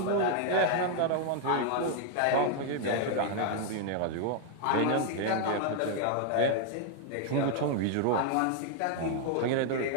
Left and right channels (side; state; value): both; different; correlation 0.00